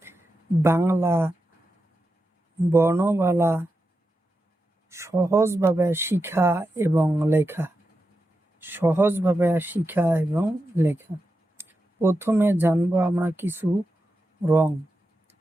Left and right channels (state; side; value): normal; both; correlation 0.89